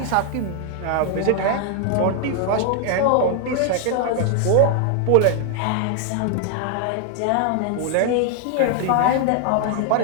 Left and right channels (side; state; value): both; different; correlation 0.00